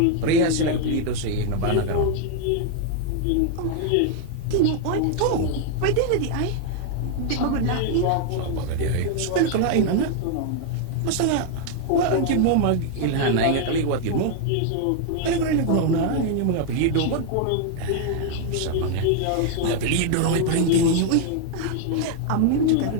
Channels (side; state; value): both; different; correlation 0.00